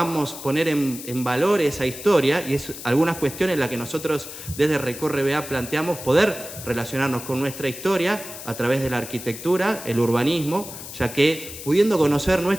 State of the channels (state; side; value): noise; left; hiss, 12 dB below the sound